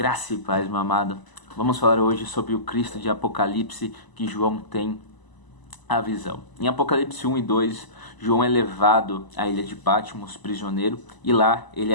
e paz, meu amado. Vamos falar hoje sobre o Cristo de Apocalipse que João tem a visão. Em Apocalipse 1 e 2, João é levado à ilha de Patmos, prisioneiro, e lá ele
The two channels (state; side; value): late; right; 1.0 ms